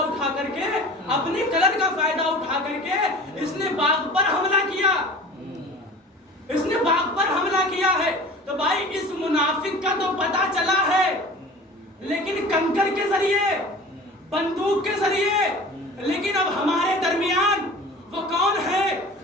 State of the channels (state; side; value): normal; both; correlation 0.40